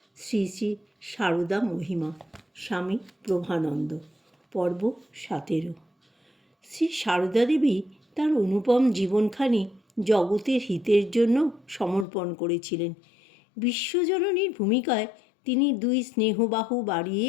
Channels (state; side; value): drops out; right; at 12.1 s